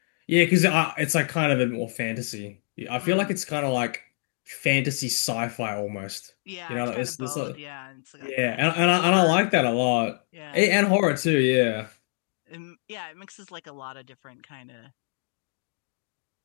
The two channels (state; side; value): silent; right; 58 dB below the other